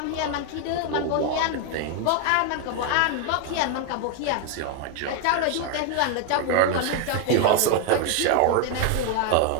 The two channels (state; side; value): different; both; correlation 0.01